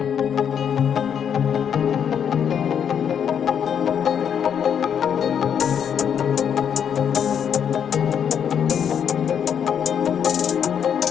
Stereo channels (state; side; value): quieter; right; 8.2 dB